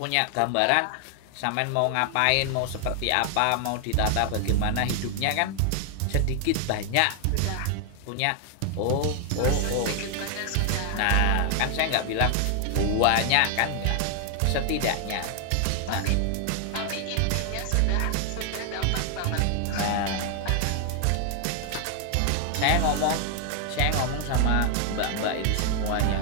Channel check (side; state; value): both; different; correlation 0.00